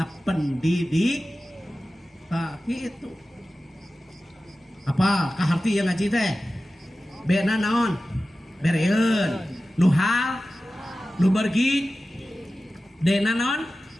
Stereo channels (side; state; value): both; normal; correlation 0.95